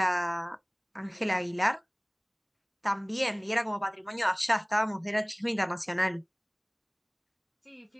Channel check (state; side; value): identical; both; correlation 1.00